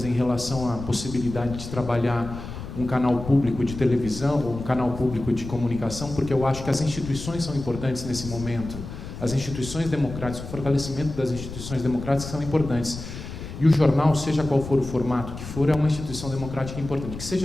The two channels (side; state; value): left; noise; rumble, 10 dB below the sound